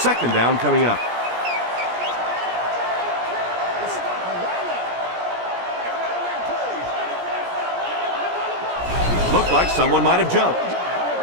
down coming up. Looked like someone might have jumped.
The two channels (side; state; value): left; late; 17 ms